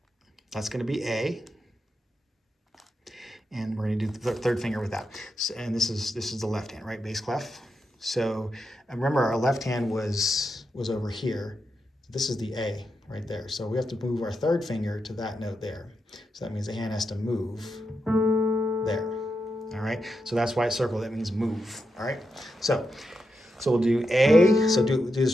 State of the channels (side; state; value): both; normal; correlation 0.86